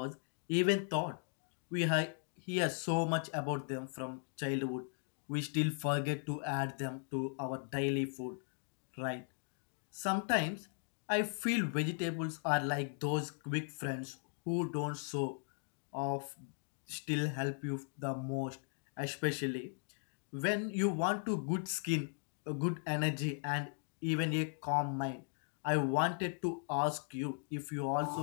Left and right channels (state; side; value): silent; right; 52 dB below the other